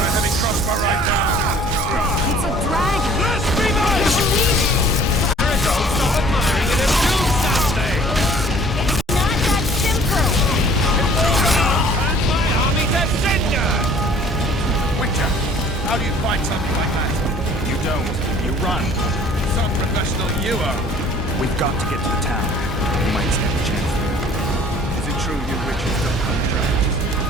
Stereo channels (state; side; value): normal; both; correlation 0.53